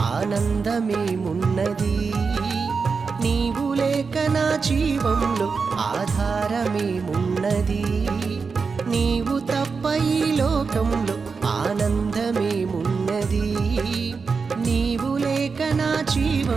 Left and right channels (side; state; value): left; quieter; 5.0 dB